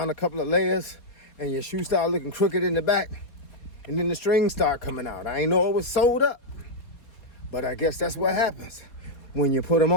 a couple of layers and your shoe start looking crooked in the back, and then the strings start coming out. I ain't know it was sewed up, but I guess that's what happens when you put them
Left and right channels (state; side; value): late; right; 4.4 ms